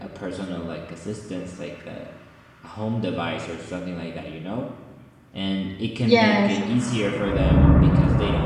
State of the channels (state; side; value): identical; both; correlation 1.00